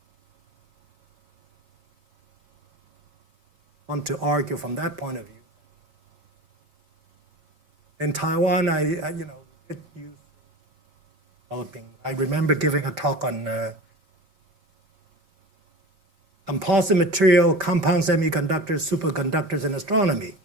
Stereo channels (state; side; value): late; left; 5.3 ms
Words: I want to argue from that point of view. In Taiwan, I did use developing. I remember giving a talk on composite material, compound semiconductors, superconductors, and astronomy.